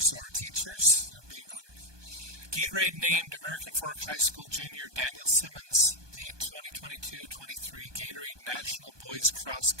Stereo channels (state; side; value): late; left; 1.2 ms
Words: or teachers, they're being honored. Gatorade named American Fork High School junior Daniel Simmons the 2022-23 Gatorade National Boys Cross